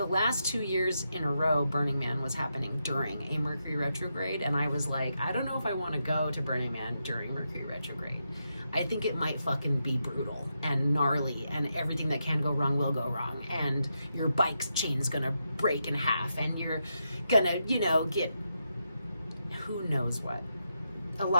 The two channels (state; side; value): inverted; both; correlation -0.85